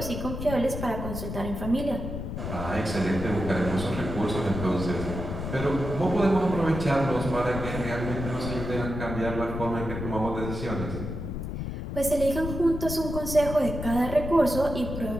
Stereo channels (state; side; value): noise; left; rumble, 5 dB below the sound